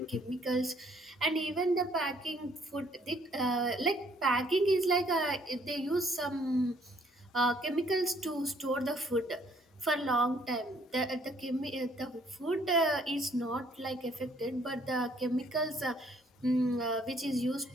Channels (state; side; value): normal; both; correlation 0.63